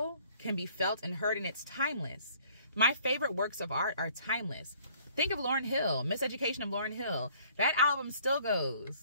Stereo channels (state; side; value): inverted; both; correlation -0.58